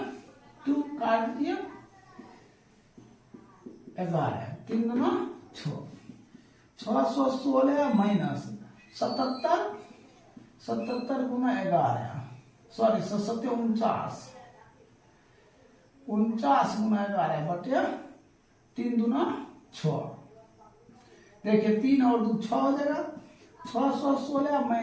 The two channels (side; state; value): both; identical; correlation 1.00